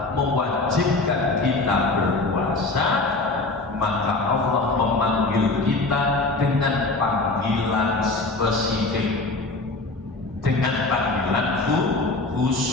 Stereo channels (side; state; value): right; quieter; 3.2 dB